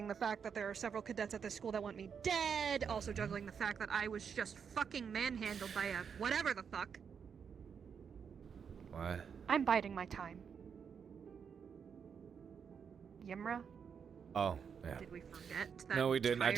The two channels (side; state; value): left; quieter; 6.8 dB